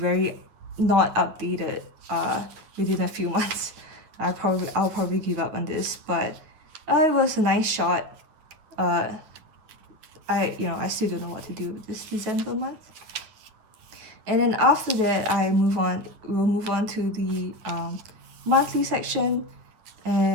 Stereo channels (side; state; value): left; late; 9.6 ms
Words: not updated within a few months. I'll probably give up on this, but it was a nice shot. I still don't know what to do with this December month. And then after that, we'll move on to the monthly section.